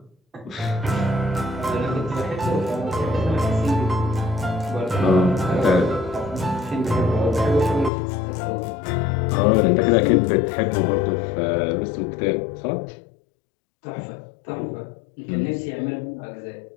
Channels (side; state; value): right; drops out; at 7.9 s